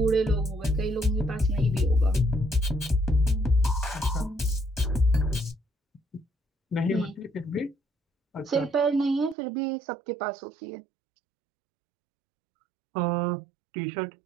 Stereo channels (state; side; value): drops out; left; at 9.3 s